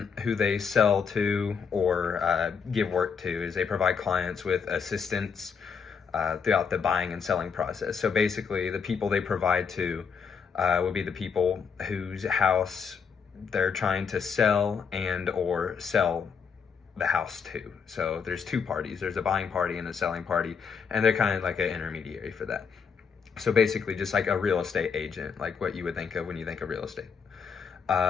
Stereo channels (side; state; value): right; quieter; 6.2 dB